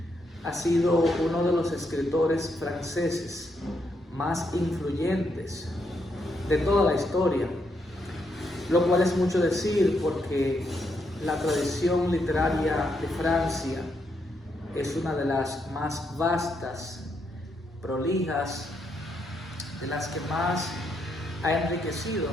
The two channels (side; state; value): both; normal; correlation 0.78